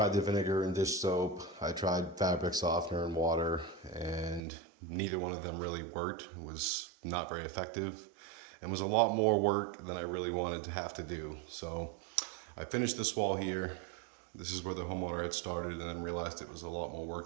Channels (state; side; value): drops out; left; at 4.4 s